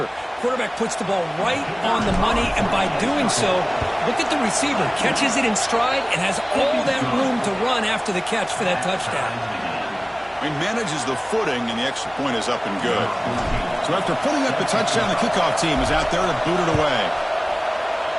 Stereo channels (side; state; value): both; identical; correlation 1.00